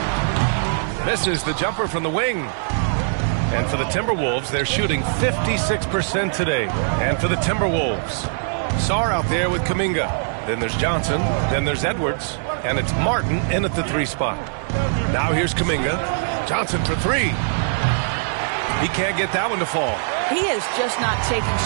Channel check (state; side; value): silent; left; 65 dB below the other